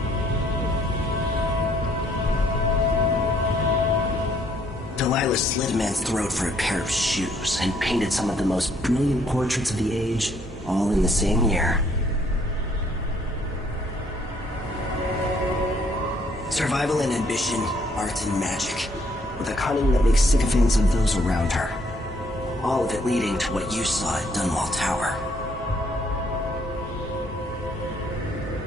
Delilah slit a man's throat for a pair of shoes and painted some of the most brilliant portraits of the age, all in the same year. Survival and ambition, art and magic, with a cunning that makes sycophants of those around her. All of it leading to what you saw at Dunwall Tower.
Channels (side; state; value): both; normal; correlation 0.66